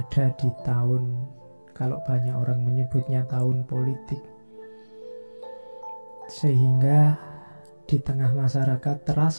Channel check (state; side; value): inverted; both; correlation -1.00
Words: di tahun, kalau banyak orang menyebutnya tahun politik, sehingga di tengah masyarakat